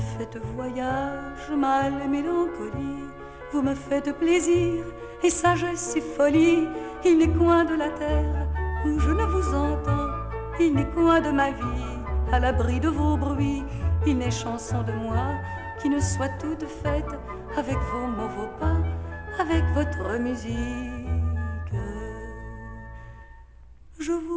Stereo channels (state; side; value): identical; both; correlation 1.00